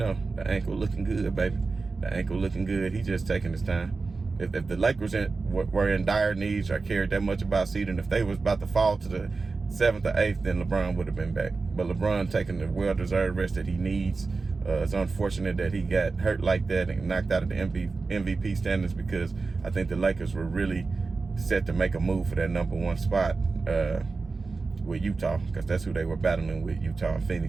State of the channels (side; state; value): left; quieter; 4.1 dB